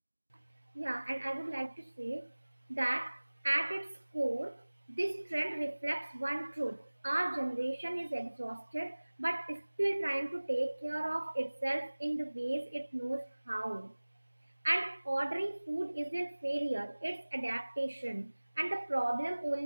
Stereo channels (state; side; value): inverted; both; correlation -1.00